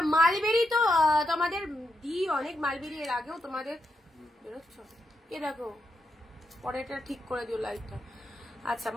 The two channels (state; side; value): normal; both; correlation 0.84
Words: মালবেরি তো তোমাদের অনেক মালবেরি এর আগেও তোমাদের বেরোচ্ছ, এ দেখো পরে এটা ঠিক করে দিও লাইটটা। আচ্ছা,